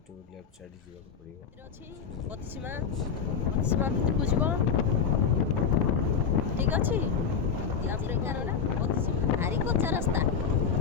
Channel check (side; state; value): right; quieter; 7.0 dB